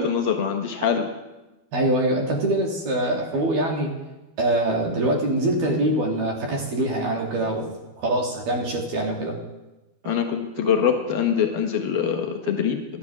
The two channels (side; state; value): left; late; 12 ms